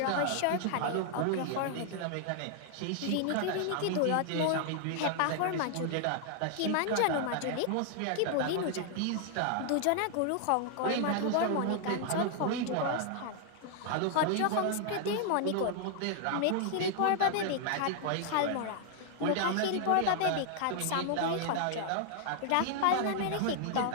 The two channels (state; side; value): different; both; correlation 0.00